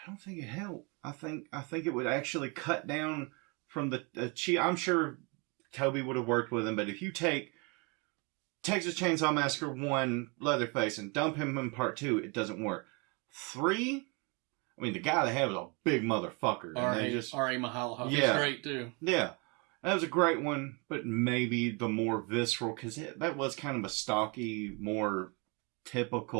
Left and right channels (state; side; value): quieter; left; 31.3 dB